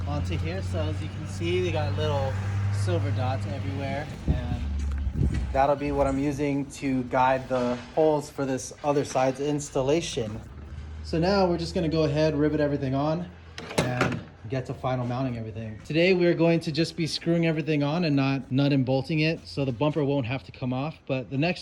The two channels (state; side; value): identical; both; correlation 1.00